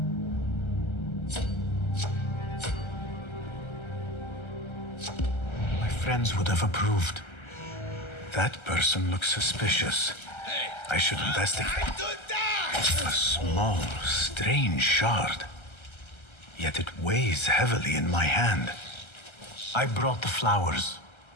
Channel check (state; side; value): late; right; 1.3 ms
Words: My friends would have approved. That person looks suspicious. I should investigate. A small, strange shard. Yet it weighs heavily in my hand. I brought the flowers